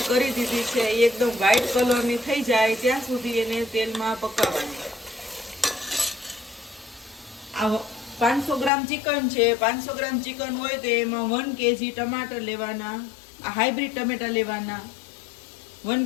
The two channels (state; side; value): drops out; right; at 8.7 s